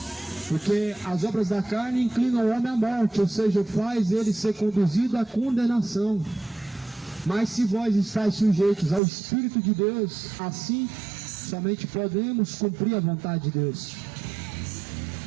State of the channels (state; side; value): drops out; left; at 9.0 s